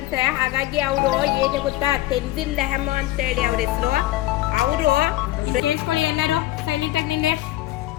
ಹಾಗಾಗಿ ಅವರು ಏನು ಗೊತ್ತಾ, ತೆನ್ಜಿಲ್ ಲೆಹಮೋ ಅಂತ ಹೇಳಿ ಅವ್ರ ಹೆಸರು. ಅವರು ಕೇಳಿಸ್ಕೊಳ್ಳಿ ಎಲ್ಲರೂ ಸೈಲೆಂಟ್ ಆಗಿ ನಿನ್ನೆ.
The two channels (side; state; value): right; quieter; 16.0 dB